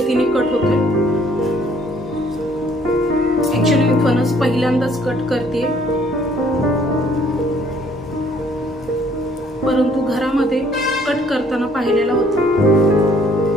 कट होतोय। ऍक्च्युअली मी फणस पहिल्यांदाच कट करते, परंतु घरामध्ये कट करताना पाहिलेला होता।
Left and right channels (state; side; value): normal; both; correlation 0.61